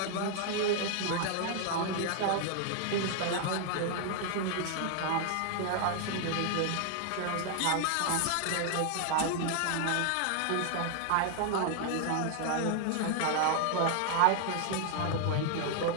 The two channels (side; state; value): both; different; correlation 0.00